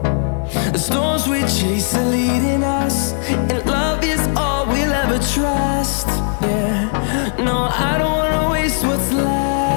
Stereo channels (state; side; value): silent; right; digital silence